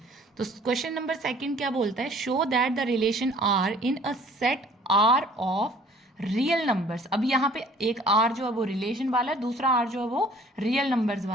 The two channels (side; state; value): both; normal; correlation 0.53